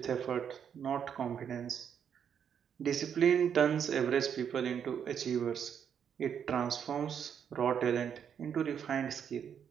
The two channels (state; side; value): quieter; left; 8.1 dB